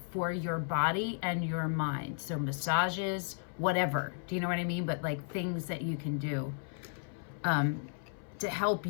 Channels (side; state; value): right; silent; 55 dB below the other